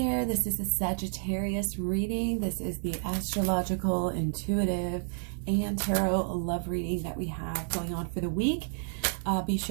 this is a Sagittarius reading. This is the astrological, intuitive, and tarot love reading that we have going on for the week. Be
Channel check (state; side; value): silent; left; 58 dB below the other